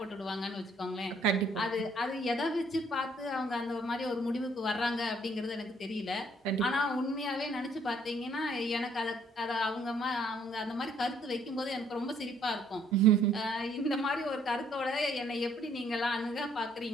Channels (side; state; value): both; normal; correlation 0.65